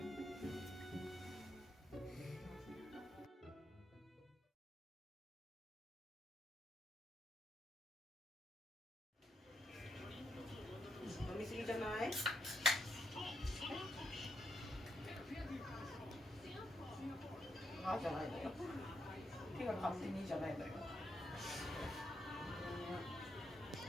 飲みすぎじゃない？あじゃないのよ。手が勝手にじゃないのよ。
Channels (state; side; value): normal; both; correlation 0.80